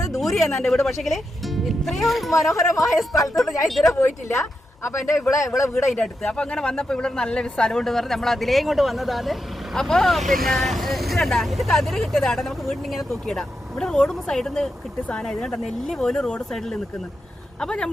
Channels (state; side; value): normal; both; correlation 0.86